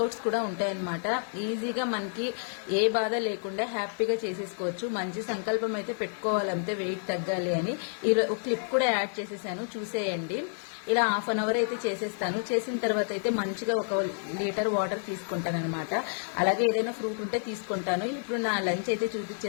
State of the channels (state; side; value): silent; right; 58 dB below the other